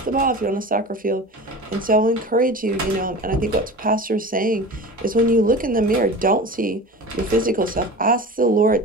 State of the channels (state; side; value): normal; both; correlation 0.34